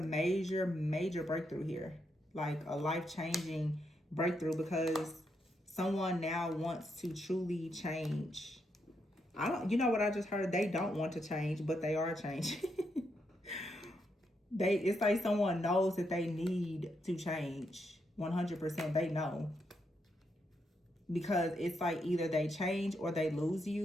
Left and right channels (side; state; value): both; normal; correlation 0.80